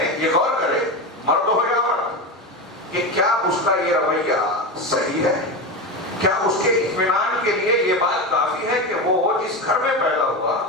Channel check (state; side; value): normal; both; correlation 0.19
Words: یہ غور کرے، مرد ہو یا مرد، کہ کیا اس کا یہ رویہ صحیح ہے، کیا اس کے اطمینان کے لیے یہ بات کافی ہے کہ وہ جس گھر میں پیدا ہوا